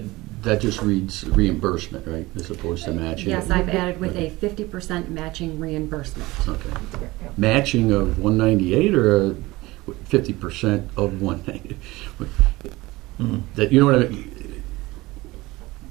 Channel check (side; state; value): left; quieter; 20.3 dB